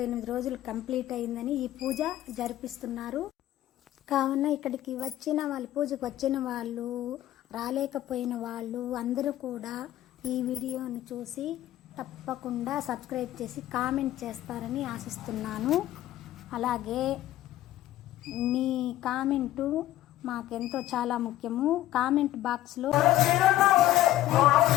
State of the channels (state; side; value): quieter; right; 14.1 dB